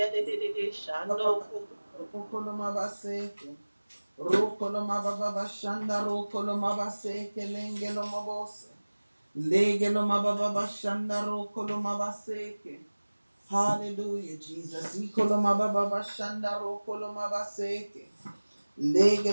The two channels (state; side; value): inverted; both; correlation -1.00